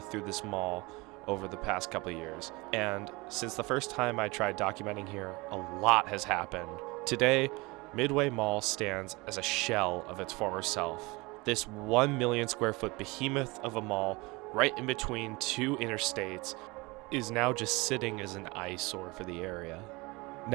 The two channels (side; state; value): left; quieter; 24.5 dB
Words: through this mall over the past couple of years. And since the first time I tried documenting here, a lot has happened. Today, Midway Mall stands as a shell of its former self. This 1 million square foot behemoth of a mall right in between two interstates is now just sitting as an eyesore for the area.